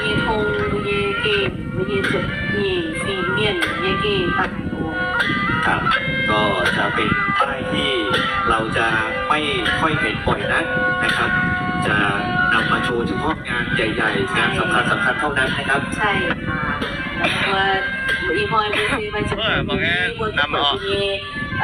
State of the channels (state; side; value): identical; both; correlation 1.00